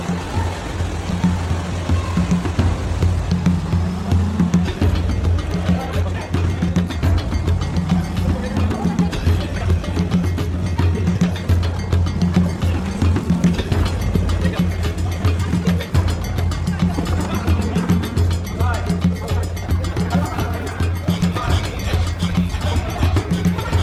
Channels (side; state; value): both; identical; correlation 1.00